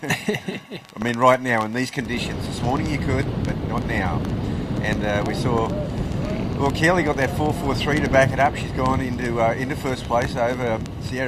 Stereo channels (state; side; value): identical; both; correlation 1.00